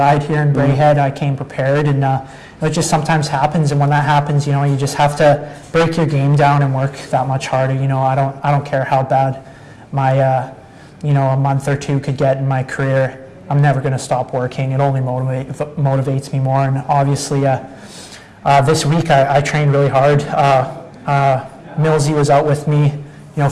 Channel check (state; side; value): identical; both; correlation 1.00